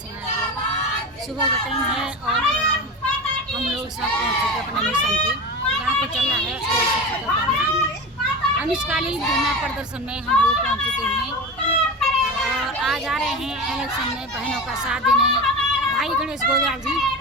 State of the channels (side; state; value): both; normal; correlation 0.26